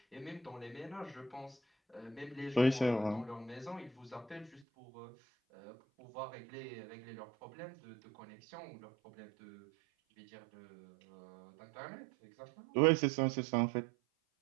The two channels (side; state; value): left; drops out; at 4.7 s